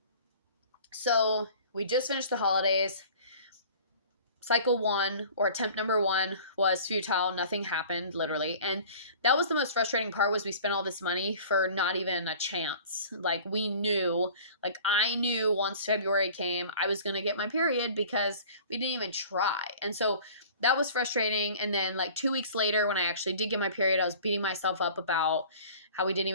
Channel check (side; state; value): both; inverted; correlation -0.45